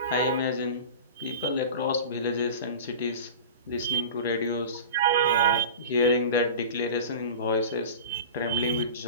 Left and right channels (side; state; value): both; inverted; correlation -0.33